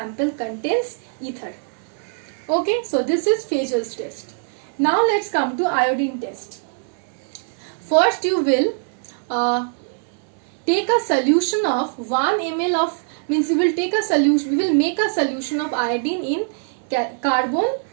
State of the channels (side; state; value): left; silent; 61 dB below the other